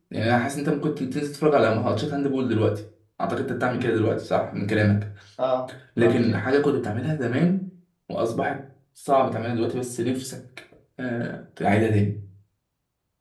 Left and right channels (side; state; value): both; identical; correlation 1.00